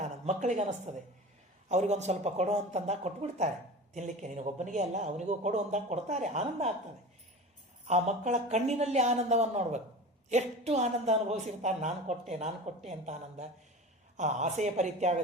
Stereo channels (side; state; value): both; normal; correlation 0.33